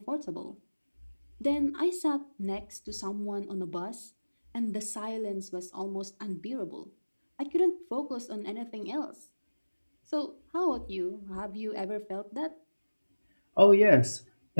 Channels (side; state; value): both; inverted; correlation -1.00